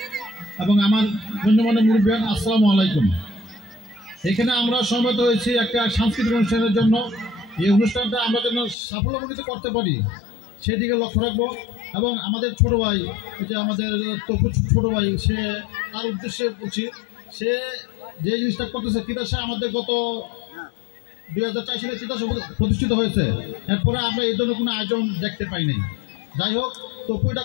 এবং আমার গণ্যমান্য মুরব্বিয়ান, আসসালামু আলাইকুম। এখানে আমরা সমবেত হয়েছি একটা সাংস্কৃতিক অনুষ্ঠানের জন্য। এই অনুষ্ঠানটা আমরা যেন সাফল্যমণ্ডিত করতে পারি সেদিকে লক্ষ্য রাখবো এবং আমাদের ছোট ভাই, যে আমাদের তপু ছোট ভাই, সে তার উদ্দেশ্যে বলছি, সে যে জিনিসটা করতেছে, তিতাসে আমাদের গত 2004 সালে তিতাস প্রতিষ্ঠিত হয়েছে। এরপরে আমরা এই ধরনের কোনো আয়োজন দেখতে পাইনি। যাই হোক, তপু এটা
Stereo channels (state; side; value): drops out; right; at 8.8 s